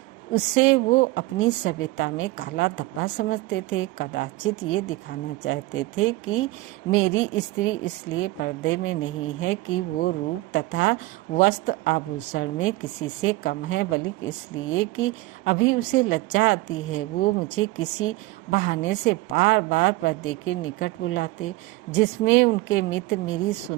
उससे वो अपनी सभ्यता में काला धब्बा समझते थे। कदाचित ये दिखाना चाहते थे कि मेरी स्त्री इसलिए पर्दे में नहीं है कि वो रूप तथा वस्त्र आभूषण में किसी से कम है, बल्कि इसलिए कि अभी उसे लज्जा आती है। वो मुझे किसी बहाने से बार बार पर्दे के निकट बुलाते, जिसमें उनके मित्र मेरी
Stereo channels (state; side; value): quieter; left; 19.4 dB